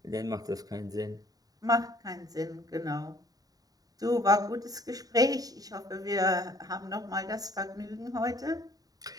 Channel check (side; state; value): left; late; 0.18 ms